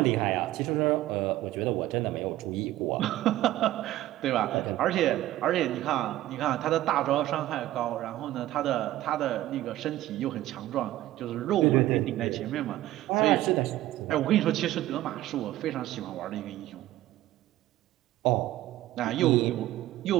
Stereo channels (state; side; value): quieter; left; 15.1 dB